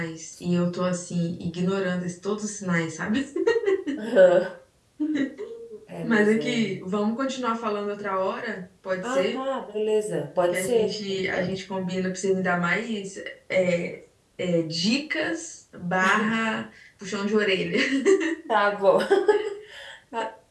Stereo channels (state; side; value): identical; both; correlation 1.00